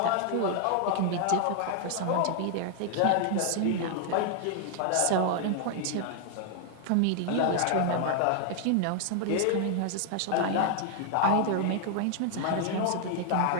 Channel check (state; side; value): different; both; correlation 0.00